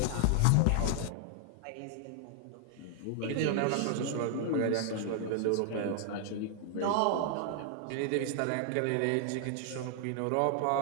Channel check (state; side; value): different; both; correlation 0.00